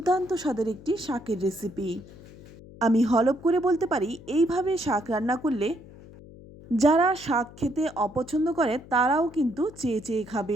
স্বাদের একটি শাকের রেসিপি। আমি হলপ করে বলতে পারি, এইভাবে শাক রান্না করলে যারা শাক খেতে অপছন্দ করে তারাও কিন্তু চেয়ে চেয়ে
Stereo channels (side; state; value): left; noise; hum, 19 dB below the sound